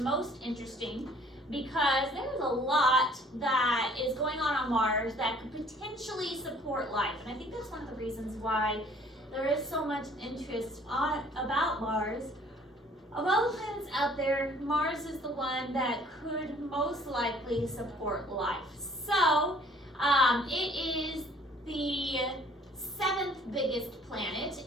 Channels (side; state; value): both; normal; correlation 0.56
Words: most interesting because there's a lot that is going on Mars that could potentially support life. And I think that's one of the reasons why there is so much interest about Mars. Of all the planets out there, Mars is the one that could most likely support life. So, it is the 7th biggest planet,